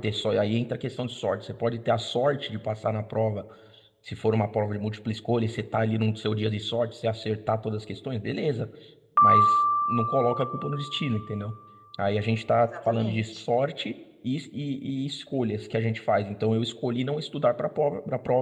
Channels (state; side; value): identical; both; correlation 1.00